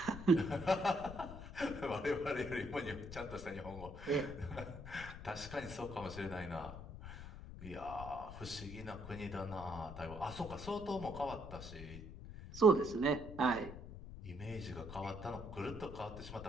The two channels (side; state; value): left; noise; rumble, 11 dB below the sound